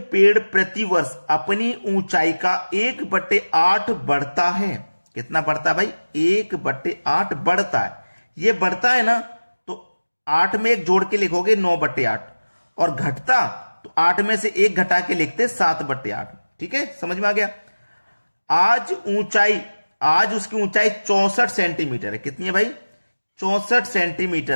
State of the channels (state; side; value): inverted; both; correlation -1.00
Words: पेड़ प्रतिवर्ष अपनी ऊंचाई का 1/8 बढ़ता है, कितना बढ़ता है भाई, 1/8 बढ़ता है, ये बढ़ता है ना, तो 8 में एक जोड़ के लिखोगे 9/8, और घटता तो 8 में से एक घटा के लिखते 7/8। ठीक है, समझ में आ गया। आज उसकी ऊंचाई 64 सेंटीमीटर है। कितनी है भाई? 64